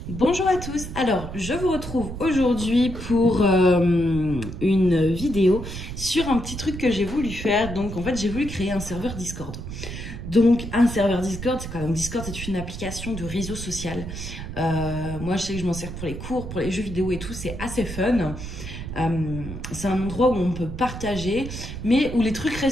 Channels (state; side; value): noise; right; rumble, 8 dB below the sound